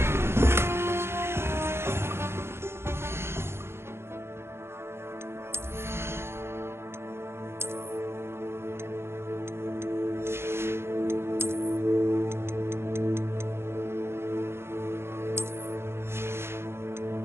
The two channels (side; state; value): left; late; 0.12 ms